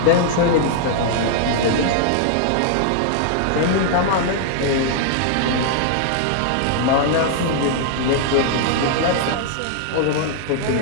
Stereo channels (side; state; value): both; different; correlation -0.01